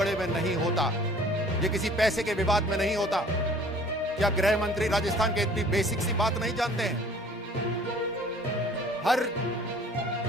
में नहीं होता, ये किसी पैसे के विवाद में नहीं होता। क्या गृह मंत्री राजस्थान के इतनी बेसिक सी बात नहीं जानते हैं?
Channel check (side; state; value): both; normal; correlation 0.51